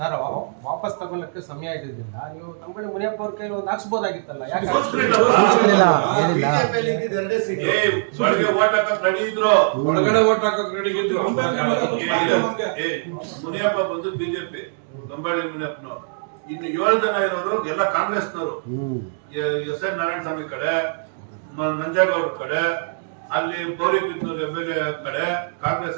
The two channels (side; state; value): left; silent; digital silence